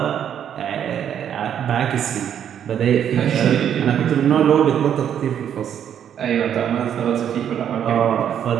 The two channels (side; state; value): left; quieter; 9.2 dB